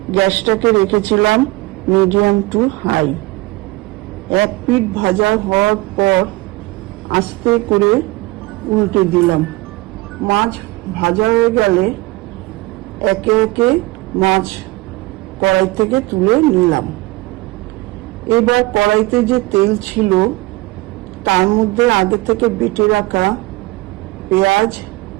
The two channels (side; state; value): left; quieter; 21.4 dB